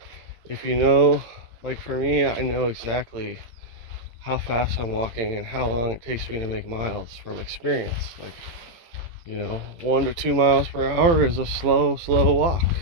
If you know, like for me, I know exactly how fast I'm walking and how long it takes me to make miles from experience. Like, you know, 1 to 2 miles per hour is a slow walk.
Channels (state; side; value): late; left; 18 ms